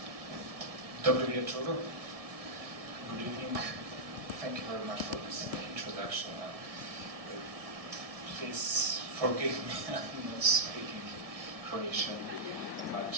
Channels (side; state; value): left; late; 1.6 ms